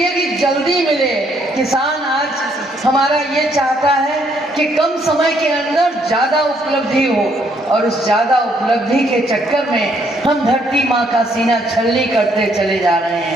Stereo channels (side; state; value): both; normal; correlation 0.69